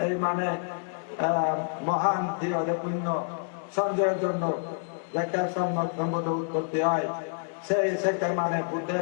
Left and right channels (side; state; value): right; silent; digital silence